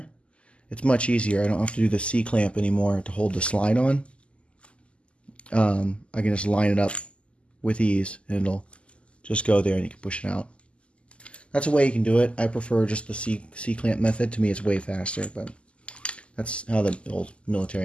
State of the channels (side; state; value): right; late; 0.055 ms